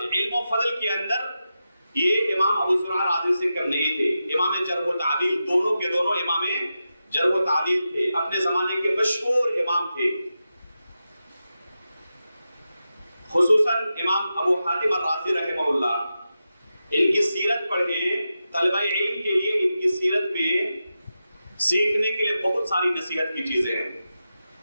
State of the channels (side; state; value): both; inverted; correlation -0.90